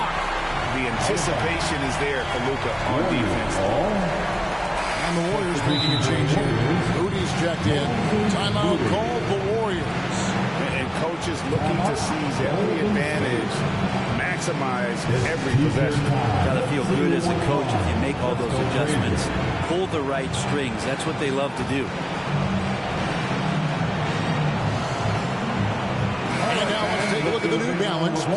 The anticipation is there for Luka on defense. And the Warriors making a change here. Moody's checked in. Timeout called the Warriors. And coaches looking to seize every advantage, maximize every possession. Got to feel good as a coach if you make all those adjustments. Pull the right strings. That's what they love to do. And now let's take a look at the New Balance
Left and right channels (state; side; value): identical; both; correlation 1.00